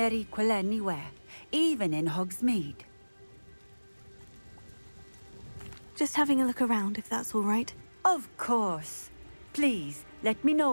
equal anywhere, even in Hogsmeade. Just having a look around, if that's all right. Of course. Please, let me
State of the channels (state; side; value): inverted; both; correlation -1.00